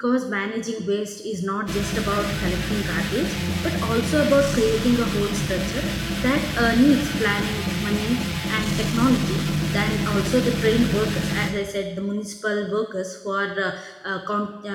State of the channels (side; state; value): both; identical; correlation 1.00